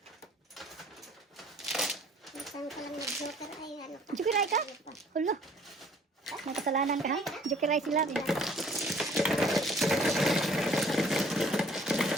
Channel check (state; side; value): normal; both; correlation 0.56